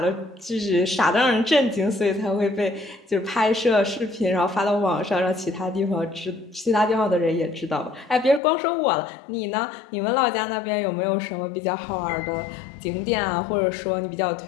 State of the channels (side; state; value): right; drops out; at 8.4 s